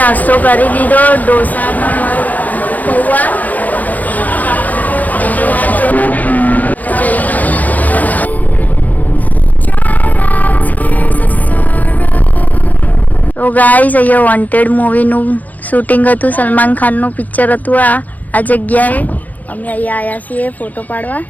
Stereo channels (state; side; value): late; right; 0.080 ms